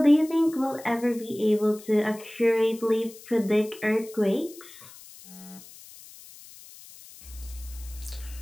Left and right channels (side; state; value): left; noise; hiss, 19 dB below the sound